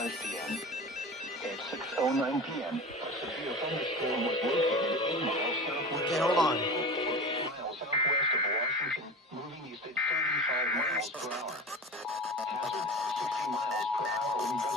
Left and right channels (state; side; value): normal; both; correlation 0.31